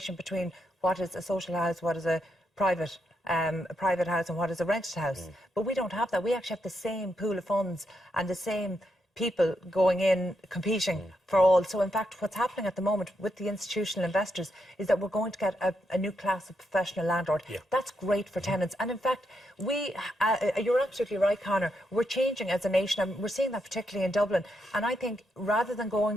between what is a social house, what is a private house, and what is a rented house. But we don't have that. We actually have the same pool of funds and the same people going in competing for all. So in fact, what's happening at the moment with the institutional investors is that we're going to get a new class of professional landlord. That's great for tenants. And in fact, you're absolutely right, Conor, we're changing as a nation, and we're seeing that particularly in Dublin. And I think rather than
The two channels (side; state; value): both; normal; correlation 0.81